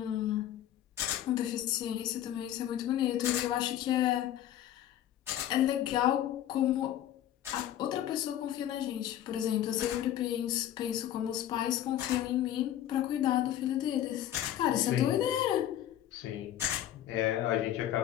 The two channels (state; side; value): quieter; right; 11.8 dB